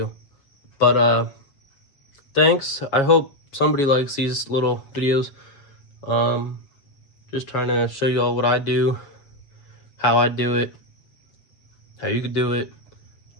but thanks. I hope somebody likes these little videos. Just trying to show you all what I do, how I do it, how you could do it.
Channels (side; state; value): right; late; 7.2 ms